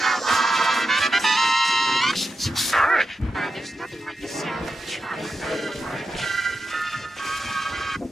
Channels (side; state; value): both; normal; correlation 0.89